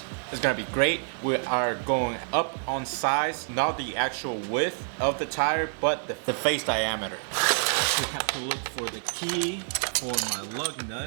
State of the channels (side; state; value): left; silent; 60 dB below the other